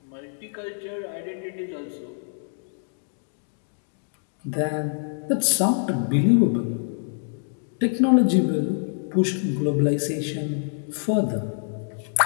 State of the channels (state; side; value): silent; right; digital silence